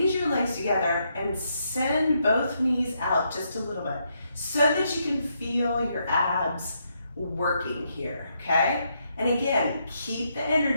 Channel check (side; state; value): both; inverted; correlation -0.78